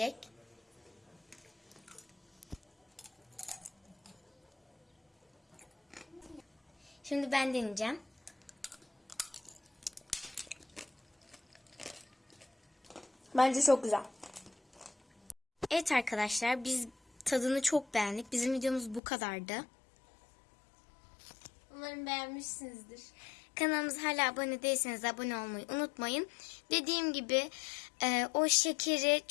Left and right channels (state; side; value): drops out; right; at 19.0 s